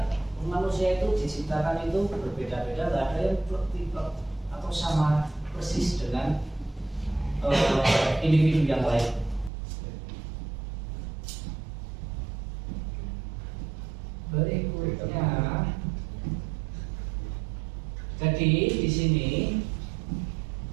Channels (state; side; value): drops out; left; at 9.5 s